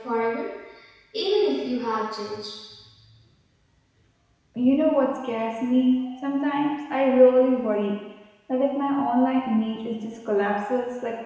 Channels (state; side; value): identical; both; correlation 1.00